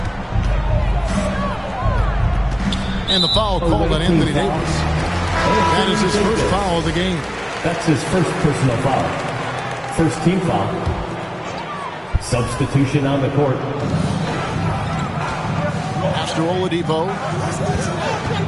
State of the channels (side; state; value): both; identical; correlation 1.00